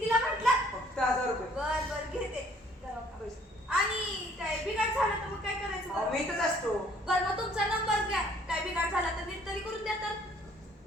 म्हटलं? फक्त 1000 रुपये. बर बर घेते. आणि काय बिघाड झालं तर मग काय करायचं अहो, बरं? मी इथंच असतो. बरं मग तुमचा नंबर घ्या. काय बिघाड झाला तर नीट तरी करून द्या तर.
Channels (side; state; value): both; normal; correlation 0.59